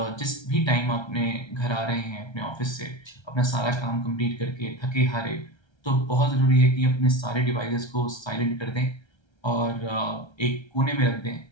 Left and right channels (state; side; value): late; right; 1.3 ms